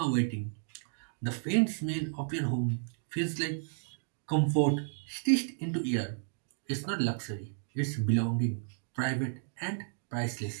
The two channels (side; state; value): left; silent; digital silence